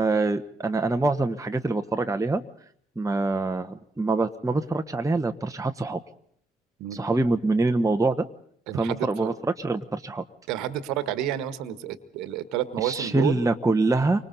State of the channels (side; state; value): left; quieter; 3.1 dB